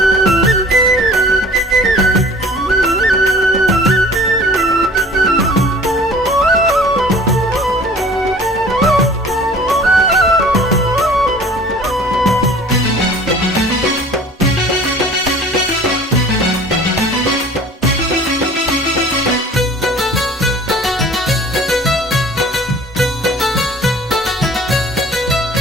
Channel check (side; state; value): both; normal; correlation 0.47